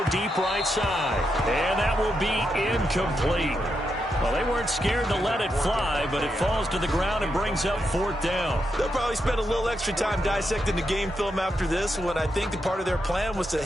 deep right side. And that will be incomplete. Well, they weren't scared to let it fly, but it falls to the ground and brings up 4th down. They'll probably spend a little extra time dissecting the game film after this one. I think the part of their plan was to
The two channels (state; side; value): normal; both; correlation 0.84